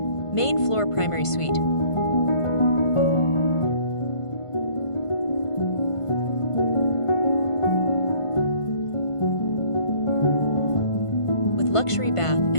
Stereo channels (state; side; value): late; right; 1.5 ms